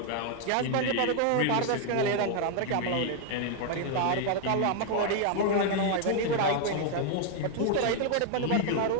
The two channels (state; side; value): different; both; correlation 0.00